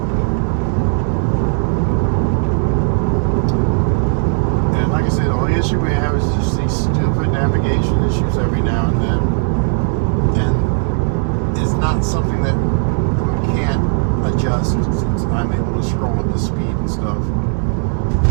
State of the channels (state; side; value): silent; left; 60 dB below the other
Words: And like I said, the only issue we have is just these stupid navigation issues every now and then. And it's not something that we can't adjust since I'm able to scroll up the speed and stuff.